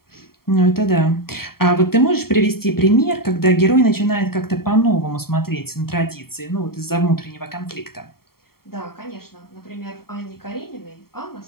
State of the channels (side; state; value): right; late; 0.94 ms